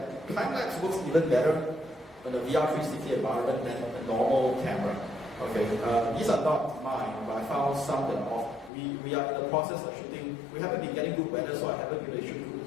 Time-lapse works even better in a VR 360 environment than a normal camera. Okay, these are not mine, but I found some that are off. We are in the process of shooting. We haven't been getting good weather, so I haven't been able to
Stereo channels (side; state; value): right; drops out; at 8.7 s